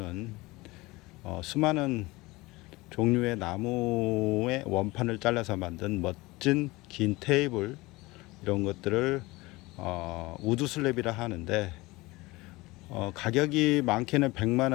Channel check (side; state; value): right; quieter; 21.6 dB